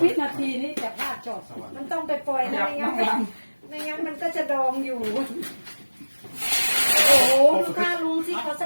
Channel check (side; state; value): both; inverted; correlation -1.00